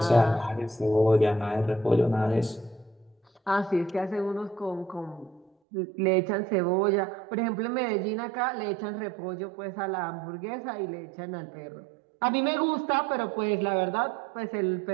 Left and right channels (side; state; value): left; drops out; at 5.5 s